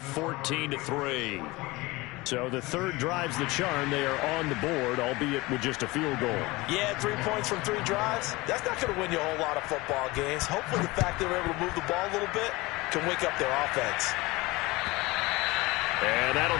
So the third drive's the charm. They are on the board, albeit with just a field goal. Yeah, 3 points from 3 drives. That's not going to win you a whole lot of football games. Hopefully the fact they were able to move the ball a little bit can wake up their offense. And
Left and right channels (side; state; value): right; quieter; 21.9 dB